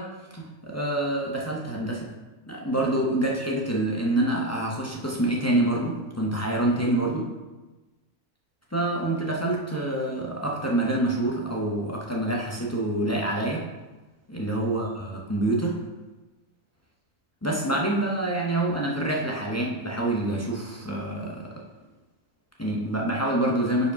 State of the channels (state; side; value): normal; both; correlation 0.13